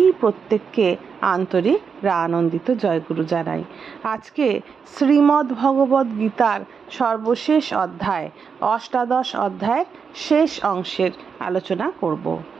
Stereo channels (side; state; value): left; quieter; 6.1 dB